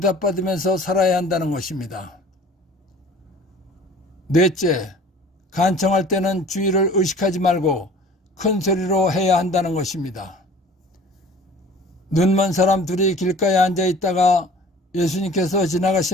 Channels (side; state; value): both; normal; correlation 0.46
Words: 살아야 한다는 것입니다. 넷째, 간청할 때는 주의를 의식하지 말고 큰 소리로 해야 한다는 것입니다. 눈먼 사람 둘이 길가에 앉아 있다가 예수님께서